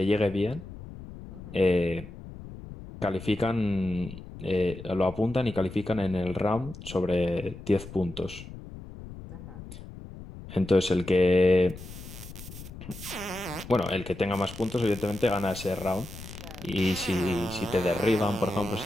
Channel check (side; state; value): left; noise; rumble, 13 dB below the sound